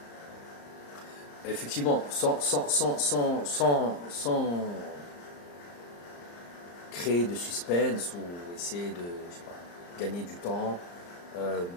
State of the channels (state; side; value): late; right; 34 ms